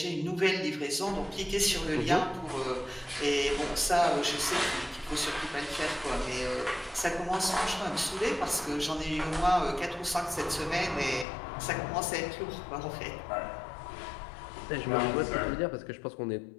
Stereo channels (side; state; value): right; drops out; at 11.2 s